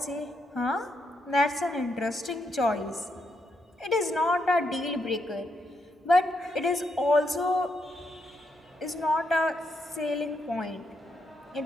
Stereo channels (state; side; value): normal; both; correlation 0.79